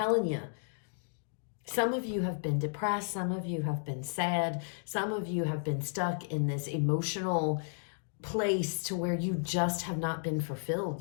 you. Some of you have been depressed. Some of you have been sad. Some of you have been stuck in this emotional place to where you just have not been fulfilled.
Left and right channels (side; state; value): right; silent; digital silence